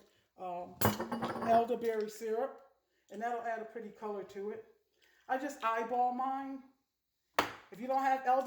elderberry syrup, and that'll add a pretty color to it. I just eyeball mine. If you don't have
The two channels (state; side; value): identical; both; correlation 1.00